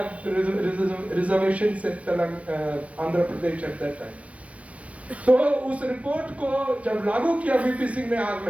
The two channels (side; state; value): left; late; 0.065 ms